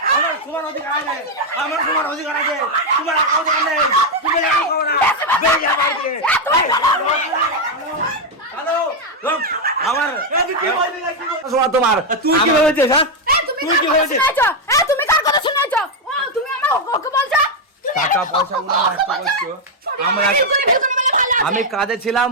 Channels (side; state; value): both; normal; correlation 0.02